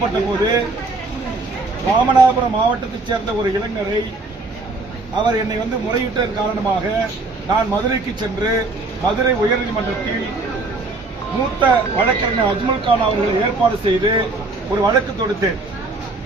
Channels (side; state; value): left; quieter; 3.4 dB